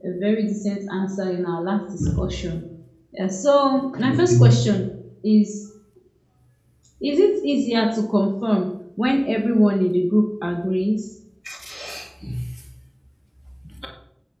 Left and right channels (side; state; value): both; identical; correlation 1.00